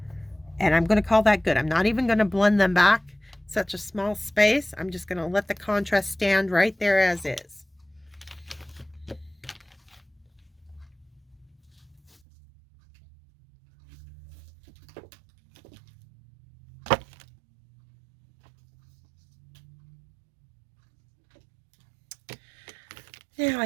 and I'm going to call that good. I'm not even going to blend them back, such a small space. I'm just going to let the contrast stand right there as is. Now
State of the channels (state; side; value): drops out; left; at 12.2 s